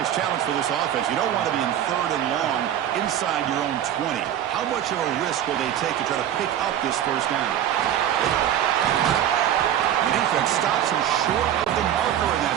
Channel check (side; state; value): left; quieter; 10.7 dB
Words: challenge for this offense. You don't want to be in third and long inside your own 20. How much of a risk will they take to try to pick up this first down? The defense stops him short of the marker in